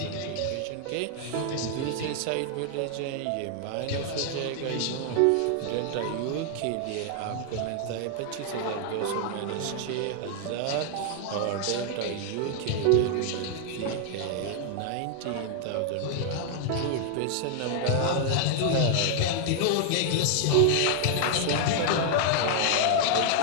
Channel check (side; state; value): both; different; correlation 0.00